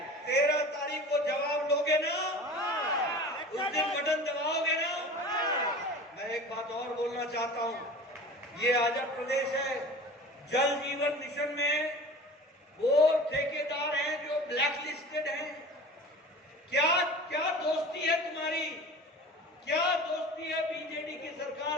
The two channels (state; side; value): normal; both; correlation 0.38